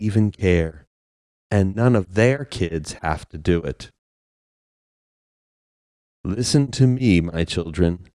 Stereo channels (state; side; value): identical; both; correlation 1.00